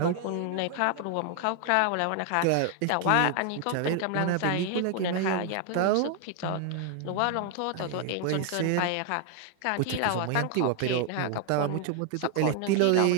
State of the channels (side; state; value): both; different; correlation 0.00